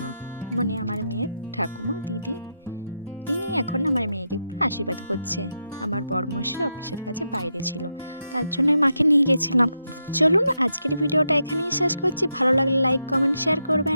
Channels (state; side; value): inverted; both; correlation -0.84